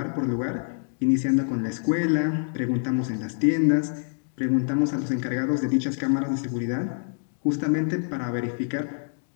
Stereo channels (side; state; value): right; silent; digital silence